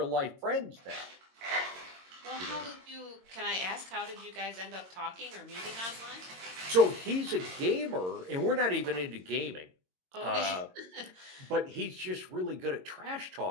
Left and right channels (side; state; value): left; late; 22 ms